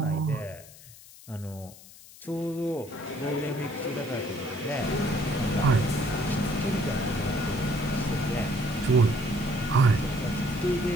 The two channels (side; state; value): left; noise; hiss, 20 dB below the sound